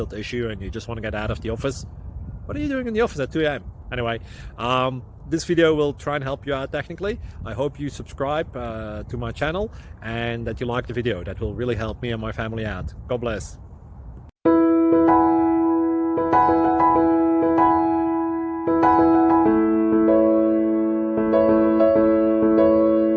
issue and you just want to get out of the office. What are you doing in the office at 2 a.m.? Anyway, this video will try and help you out technically. I hope you subscribe to my channel and that you like the video. That will really help me and my family out. God bless.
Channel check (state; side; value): identical; both; correlation 1.00